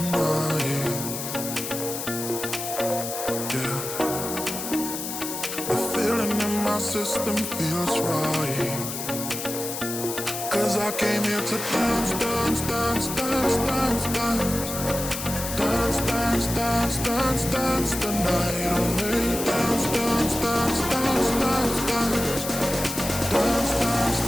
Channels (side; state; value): left; noise; hiss, 6 dB below the sound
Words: Yeah, the feeling in my system feels right. 'Cause I came here to dance, dance, dance, dance, dance, dance. Dance, dance, dance, dance, dance the night away. Dance, dance, dance, dance, dance, dance. Dance, dance,